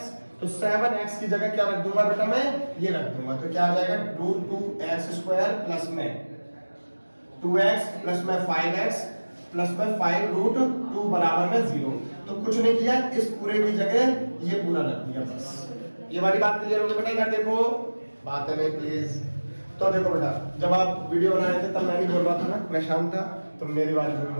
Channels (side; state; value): both; inverted; correlation -1.00